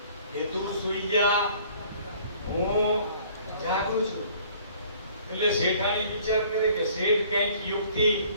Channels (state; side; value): inverted; both; correlation -0.55